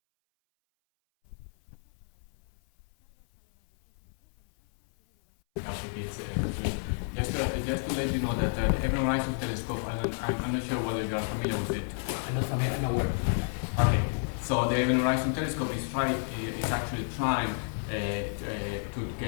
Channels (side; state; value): right; silent; 58 dB below the other